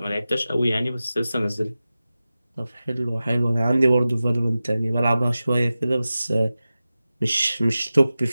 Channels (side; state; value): both; inverted; correlation -0.95